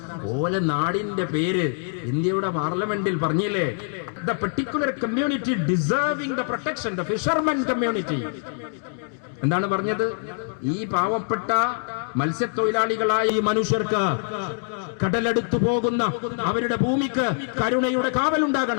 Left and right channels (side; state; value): right; silent; digital silence